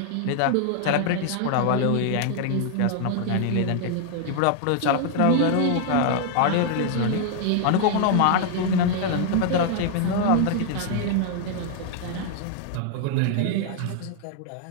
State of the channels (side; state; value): both; different; correlation 0.00